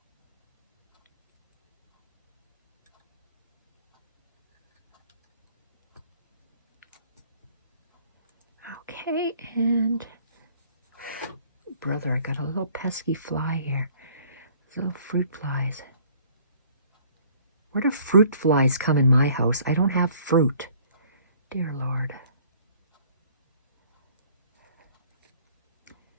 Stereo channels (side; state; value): both; inverted; correlation -0.56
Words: Okay, and brother, I got a little pesky fly here. Little fruit flies. Where do fruit flies come in my house? I don't have fruit. Dear Lord.